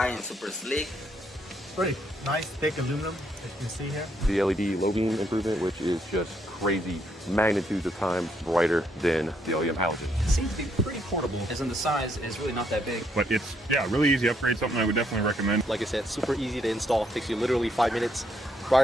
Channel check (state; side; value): normal; both; correlation 0.73